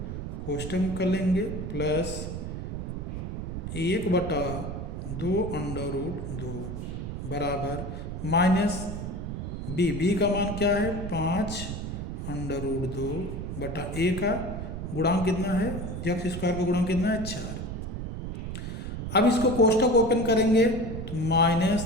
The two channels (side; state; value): right; noise; rumble, 5 dB below the sound